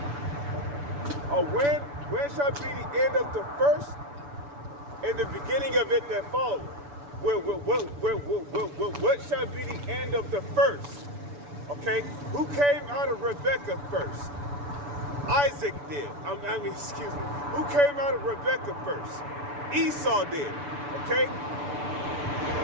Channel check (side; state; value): left; late; 7.0 ms